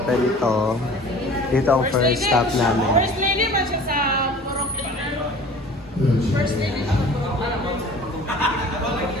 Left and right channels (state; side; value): normal; both; correlation 0.44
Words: to. Dito ang first stop namin. First lady man siya sa Purok. First lady sa Purok.